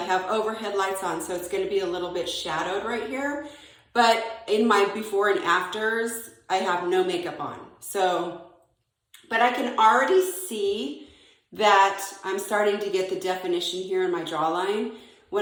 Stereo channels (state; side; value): identical; both; correlation 1.00